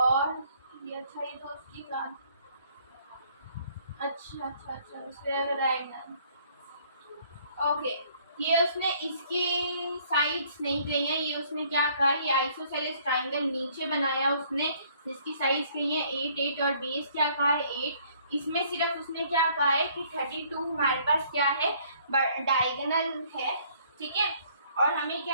ये अच्छा, ये तो उसकी बात, अच्छा स्क्वायर डायगोनल, ओके। ये उसने इसकी साइड्स नहीं कही है, ये उसने क्या कहा, ये आइसोसेलेस ट्राइंगल नीचे बनाया उसने, जिसकी साइड्स कही है 8 8 और बेस क्या कहा है 8। इसमें सिर्फ उसने क्या कहा है कि 32 हमारे पास क्या है डायगोनल है, ठीक है। और हमें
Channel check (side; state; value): both; inverted; correlation -0.61